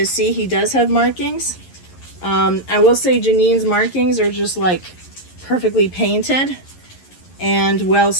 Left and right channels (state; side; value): late; right; 11 ms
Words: see he does have markings. I will say Janine's markings are just like perfectly painted and well